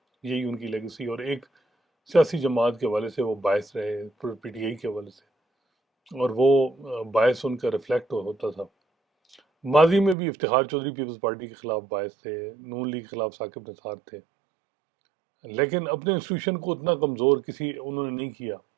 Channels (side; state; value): left; drops out; at 10.2 s